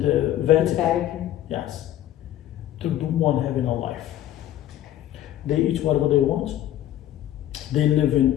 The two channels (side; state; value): right; quieter; 12.6 dB